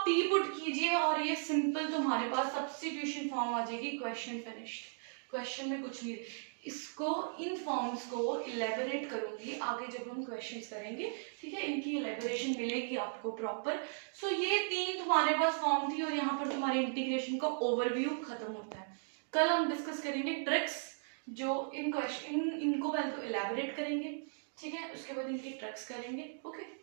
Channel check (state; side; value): silent; left; digital silence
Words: t पुट कीजिए और ये सिंपल तुम्हारे पास सब्स्टिट्यूशन फॉर्म आ जाएगी, क्वेश्चन फिनिश्ड। क्वेश्चन में कुछ नहीं, इसको इन फॉर्म्स को इलेबोरेट करूंगी आगे जब हम क्वेश्चंस करेंगे, ठीक है, इनकी इलेबोरेशन मिलेगी आपको प्रॉपर। सो ये तीन तुम्हारे पास फॉर्म थी और यहाँ पर तुम्हारे इंटीग्रेशन का ओवरव्यू खत्म होता है। कल हम डिस्कस करेंगे ट्रिक्स, जो इन क्वेश्चन इनको पहले तो इलेबोरेट करेंगे, ठीक है, उसके बाद इनकी ट्रिक्स करेंगे। ओके,